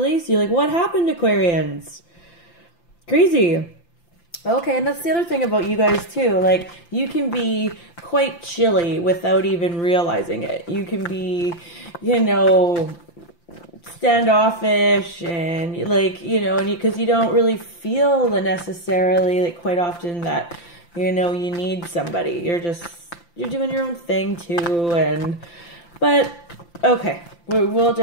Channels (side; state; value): right; late; 5.8 ms